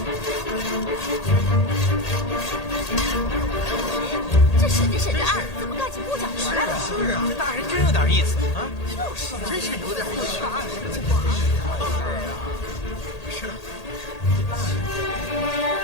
这审着审着案，怎么干起木匠活来了？是啊，这大人真有点意思啊！就是，真是有点意思。大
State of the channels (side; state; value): right; late; 1.8 ms